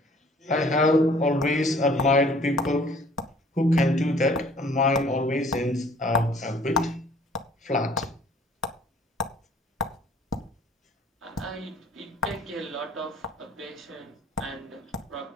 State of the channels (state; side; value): normal; both; correlation 0.55